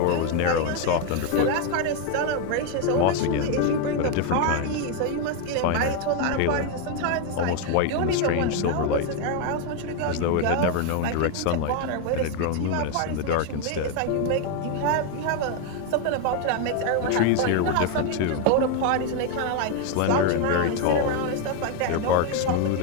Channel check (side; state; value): both; different; correlation 0.01